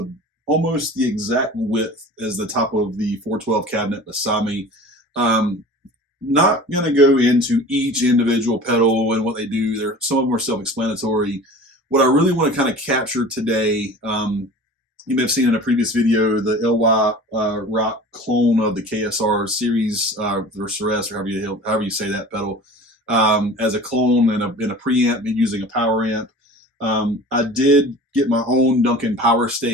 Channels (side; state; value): both; normal; correlation 0.40